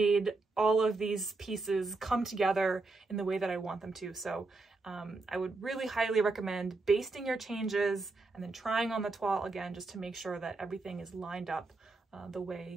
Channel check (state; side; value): quieter; left; 3.5 dB